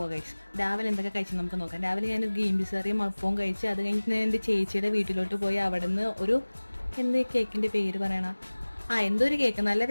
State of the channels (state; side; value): inverted; both; correlation -1.00